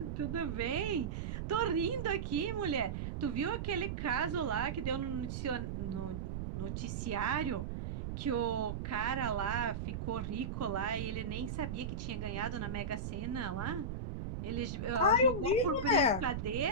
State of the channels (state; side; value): noise; right; rumble, 4 dB below the sound